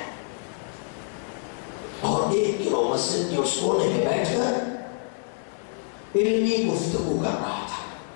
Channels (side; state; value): right; silent; digital silence